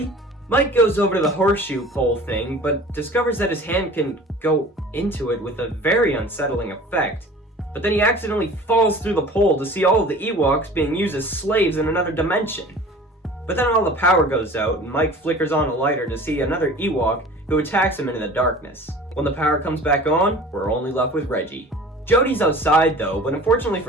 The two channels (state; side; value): normal; both; correlation 0.43